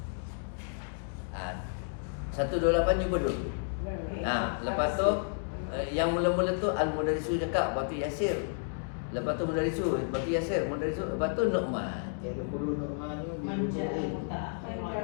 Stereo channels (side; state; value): right; silent; digital silence